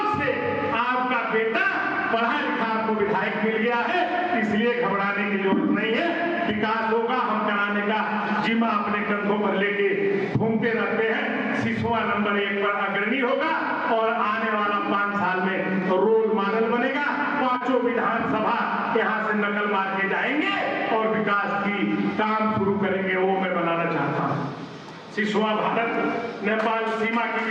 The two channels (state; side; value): identical; both; correlation 1.00